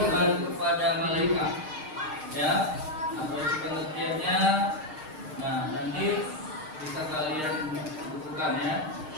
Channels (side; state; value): left; late; 6.5 ms